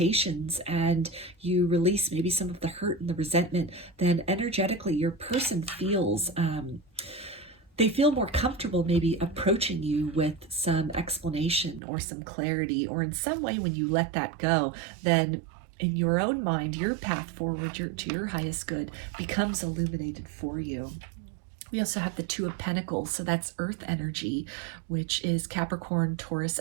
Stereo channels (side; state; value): left; drops out; at 11.8 s